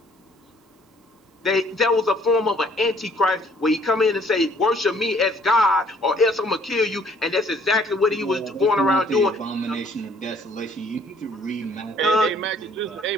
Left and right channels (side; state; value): both; normal; correlation 0.60